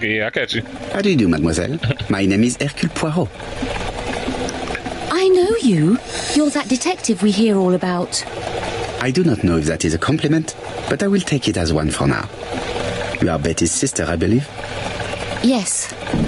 yeah, I catch you. How do you do, mademoiselle? My name is Hercule Poirot. I know you. You're that detective we hear all about. I do not know if that is a compliment, but I will take it as one for now. You are Betty's sister, I believe? Yes.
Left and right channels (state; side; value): identical; both; correlation 1.00